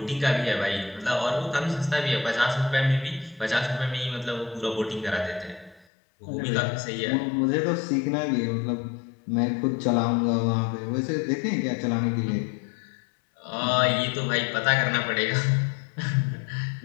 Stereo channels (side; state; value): right; drops out; at 5.9 s